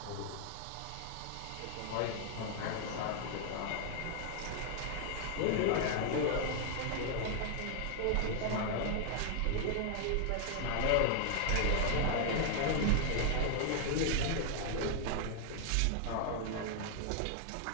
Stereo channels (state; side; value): different; both; correlation 0.00